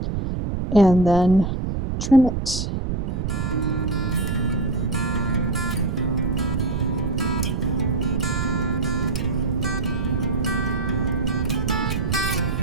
and then trim it.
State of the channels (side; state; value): right; noise; rumble, 1 dB below the sound